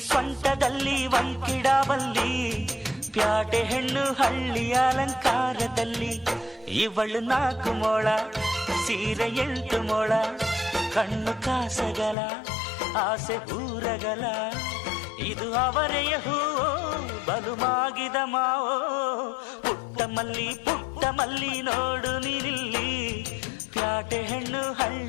ಸೊಂಟದಲ್ಲಿ ವಂಕಿಡಬಲ್ಲಿ, ಪ್ಯಾಟೆ ಹೆಣ್ಣು ಹಳ್ಳಿ ಅಲಂಕಾರದಲ್ಲಿ. ಇವಳು 4 ಮೊಳ ಸೀರೆ 8 ಮೊಳ, ಕಣ್ಣು ಕಾಸಗಲ ಆಸೆ ಊರಗಲ, ಇದು ಅವರೆಯ ಹೂವೋ ಬಲು ಮಾಗಿದ ಮಾವೋ. ಪುಟ್ಟ ಮಲ್ಲಿ ನೋಡು ನೀನಿಲ್ಲಿ, ಪ್ಯಾಟೆ ಹೆಣ್ಣು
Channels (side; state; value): right; drops out; at 12.2 s